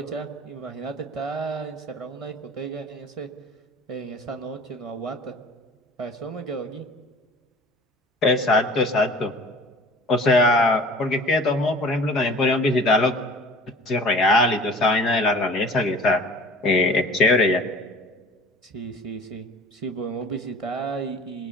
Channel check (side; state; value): both; normal; correlation 0.45